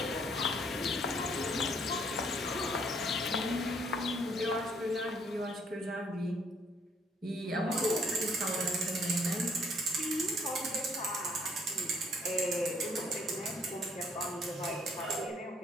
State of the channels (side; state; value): both; normal; correlation 0.64